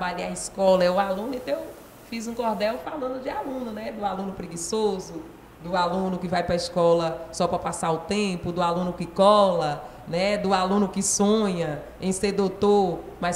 é a escola, é o aluno, então eu fiz um cordel falando de aluno, né? Do aluno preguiçoso, do aluno que vai para a escola só para passar o tempo, do aluno que cola, né? Do aluno que sonha em ser doutor,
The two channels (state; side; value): identical; both; correlation 1.00